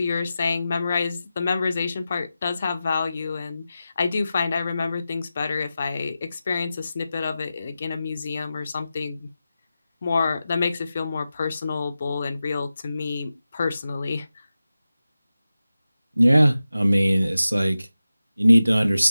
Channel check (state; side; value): inverted; both; correlation -0.93